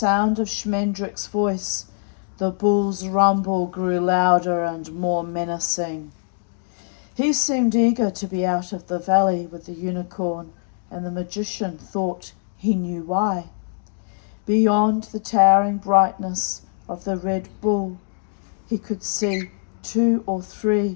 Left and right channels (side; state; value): right; silent; digital silence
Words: of Schmendrick's voice, the bull's rumble grew louder and more menacing. He seemed eager to be out of the valley with the unicorn, and the magician thought he knew why. Beyond the towering brightness of the Red Bull, he could see 2 or 3